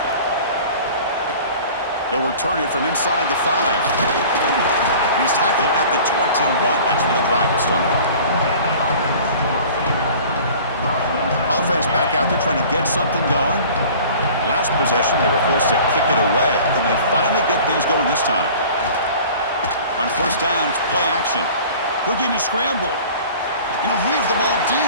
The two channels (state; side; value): inverted; both; correlation -0.44